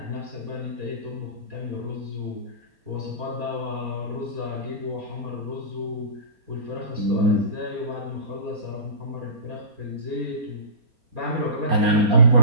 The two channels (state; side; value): late; left; 4.3 ms